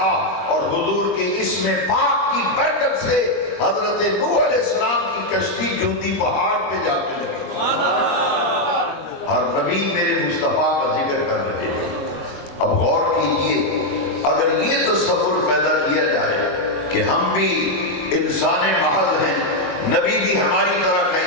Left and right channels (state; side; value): late; right; 22 ms